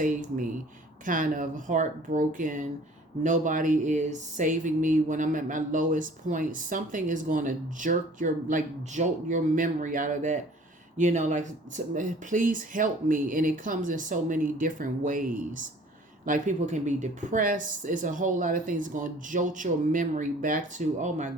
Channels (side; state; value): both; normal; correlation 0.51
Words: me, kind of heartbroken. Nobody is saving me when I'm at my lowest point. Something is going to jolt your memory out of that. Please help me. And it comes in so many different ways. Like people can be depressed. It's a whole lot of things going to jolt your memory back to, oh my